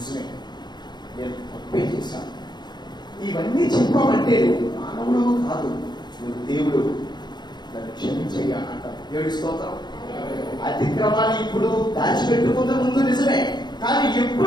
నేను తప్పే చేశాను. ఇవన్నీ చెప్పామంటే నువ్వు మానవుడు కాదు, నువ్వు దేవుడు, నన్ను క్షమించయ్యా అంటారు. దేవుడి స్తోత్రం. అతిక్రమాన్ని ఇప్పుడు దాచిపెట్టుకున్న ముందు నిజమే, కానీ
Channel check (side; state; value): right; late; 0.21 ms